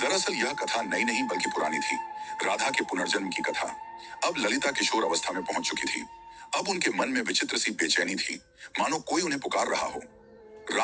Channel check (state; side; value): identical; both; correlation 1.00